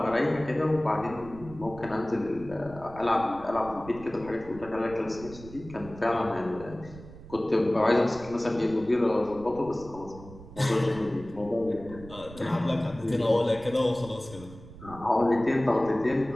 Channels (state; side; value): noise; right; rumble, 17 dB below the sound